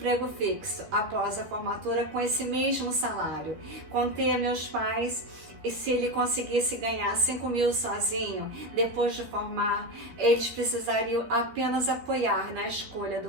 fixo após a formatura com esse mesmo salário. Contei a meus pais e se ele conseguisse ganhar 5 mil sozinho, depois de formar, eles precisariam apenas apoiar na escolha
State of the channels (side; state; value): left; late; 13 ms